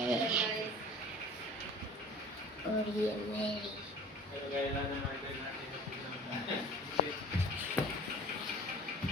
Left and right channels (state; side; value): normal; both; correlation 0.44